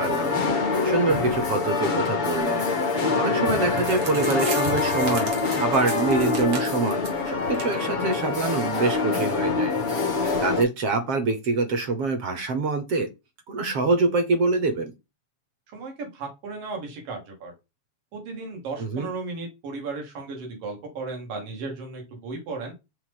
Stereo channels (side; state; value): left; late; 7.1 ms